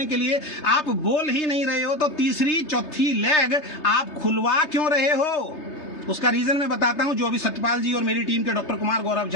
के लिए आप बोल ही नहीं रहे हो तो तीसरी चौथी लाख आप खुलवा क्यों रहे हो? उसका रीजन मैं बताता हूं। जो अभी सत्यपाल जी और मेरी टीम के डॉक्टर कुमार, गौरव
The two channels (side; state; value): right; late; 3.3 ms